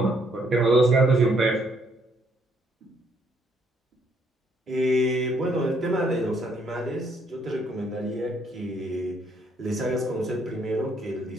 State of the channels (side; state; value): both; normal; correlation 0.70